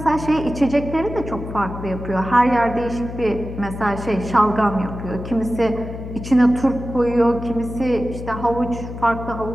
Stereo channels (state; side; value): noise; left; hum, 9 dB below the sound